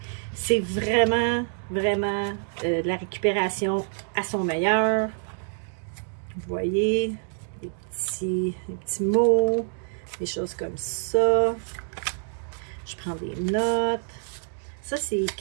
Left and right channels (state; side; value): silent; left; 61 dB below the other